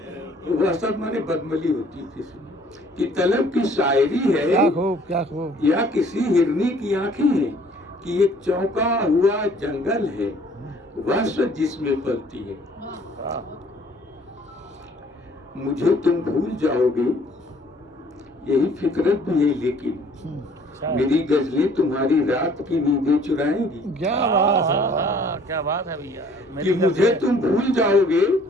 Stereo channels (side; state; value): both; normal; correlation 0.57